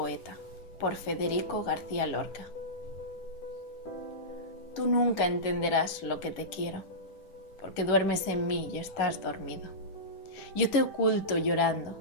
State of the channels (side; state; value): right; late; 10 ms